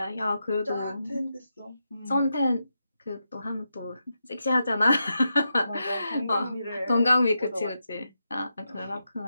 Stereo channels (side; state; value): both; inverted; correlation -0.86